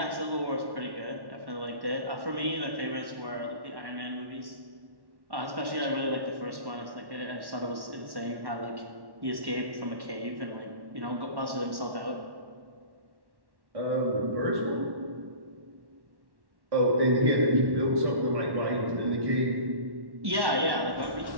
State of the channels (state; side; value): late; left; 1.1 ms